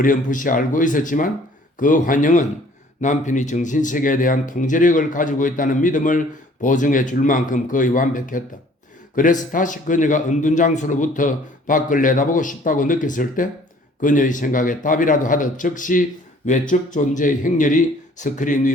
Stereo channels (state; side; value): normal; both; correlation 0.55